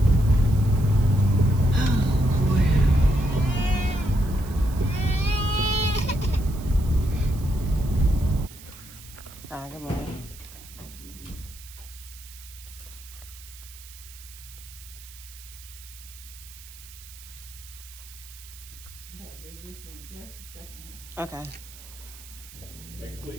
Good morning. Okay. Next,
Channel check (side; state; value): right; noise; hiss, 18 dB below the sound